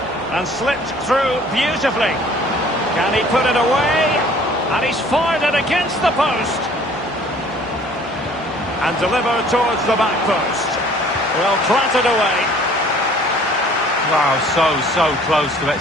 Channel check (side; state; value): both; normal; correlation 0.54